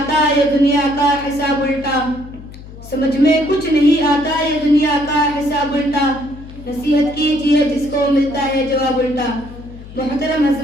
یہ دنیا کا حساب الٹا، سمجھ میں کچھ نہیں آتا یہ دنیا کا حساب الٹا، نصیحت کیجیے جس کو ملتا ہے جواب الٹا۔ محترم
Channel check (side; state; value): left; noise; hum, 16 dB below the sound